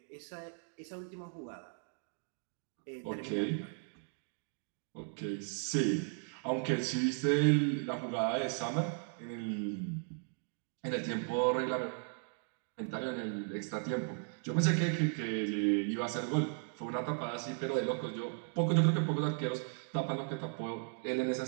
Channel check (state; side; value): silent; left; 54 dB below the other